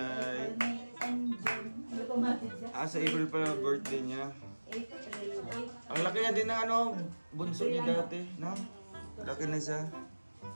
May and June. Ano pa mati siya? Sa April pala birthday niya. April. Ang laki na din ng bunso niya dati. No? Laki na siya.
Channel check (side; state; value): both; inverted; correlation -1.00